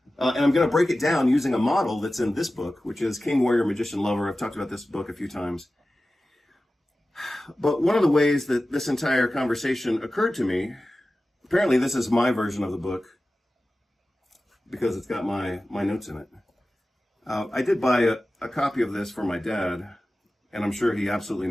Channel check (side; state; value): both; normal; correlation 0.95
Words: And I'm going to break it down using a model that's in this book, which is King, Warrior, Magician, Lover. I've talked about this book a few times. But one of the ways that this entire conversation occurred to me, apparently this is my version of the book, because it's got my notes in it. I did buy a copy of this for my dad, and I'm sure he absolutely